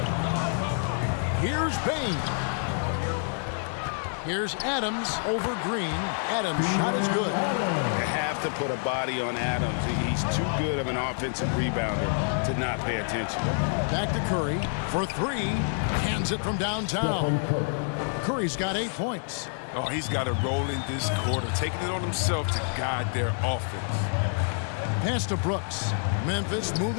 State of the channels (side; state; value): right; silent; 60 dB below the other